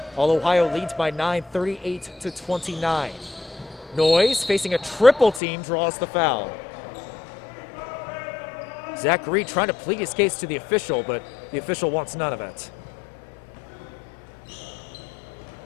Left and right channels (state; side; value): drops out; right; at 5.4 s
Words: All Ohio leads by 9, 38-29. Noyes facing a triple team draws the foul. Zach Reed trying to plead his case to the official, but the official wants none of it.